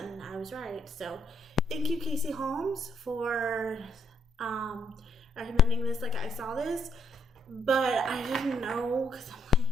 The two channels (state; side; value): normal; both; correlation 0.74